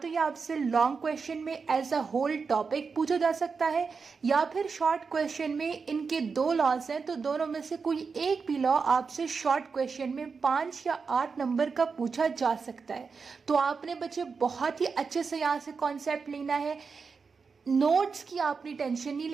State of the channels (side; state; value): left; quieter; 5.1 dB